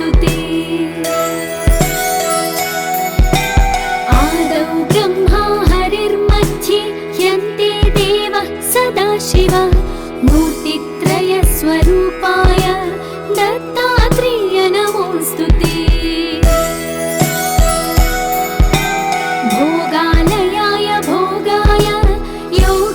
आदौ ब्रह्मा हरिर्मध्ये ह्यन्ते देवः सदाशिवः मूर्तित्रयस्वरूपाय दत्तात्रेय नमोऽस्तुते। भोगालयाय भोगाय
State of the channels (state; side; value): identical; both; correlation 1.00